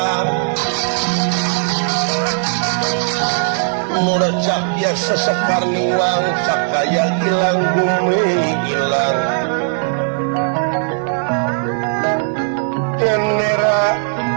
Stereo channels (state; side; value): silent; left; 68 dB below the other